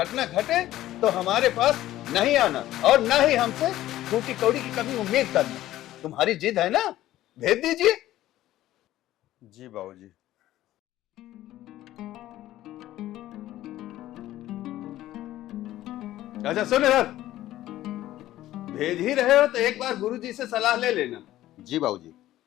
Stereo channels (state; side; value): quieter; right; 14.4 dB